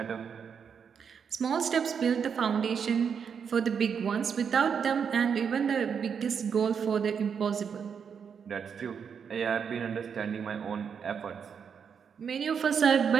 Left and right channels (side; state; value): left; quieter; 6.9 dB